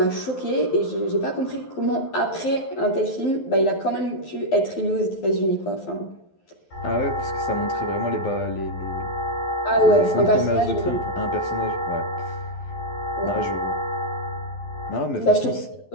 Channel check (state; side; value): late; right; 11 ms